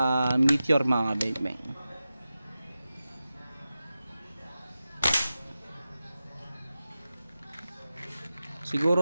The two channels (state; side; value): inverted; both; correlation -0.93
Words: meteor mga kabeng-beng.